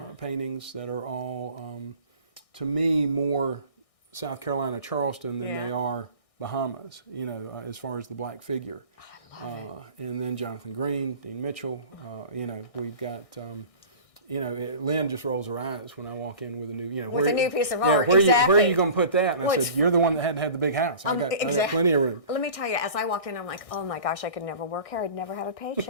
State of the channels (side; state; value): right; late; 1.6 ms